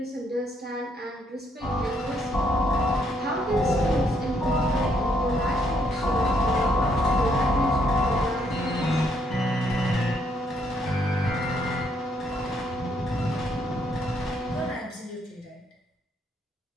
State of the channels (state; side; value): normal; both; correlation 0.72